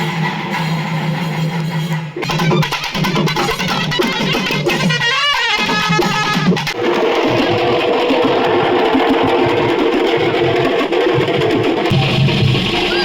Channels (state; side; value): identical; both; correlation 1.00